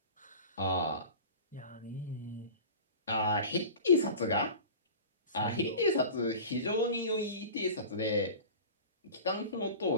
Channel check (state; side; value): inverted; both; correlation -0.36